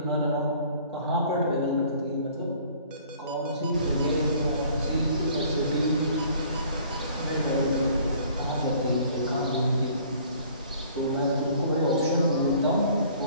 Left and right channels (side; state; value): both; inverted; correlation -0.55